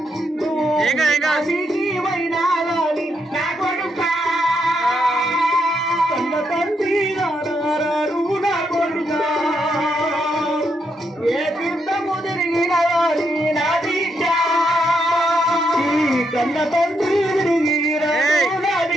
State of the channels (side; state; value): both; normal; correlation 0.79